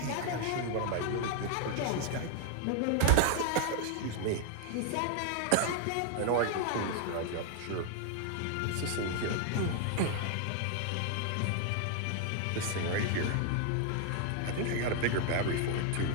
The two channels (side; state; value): both; different; correlation 0.00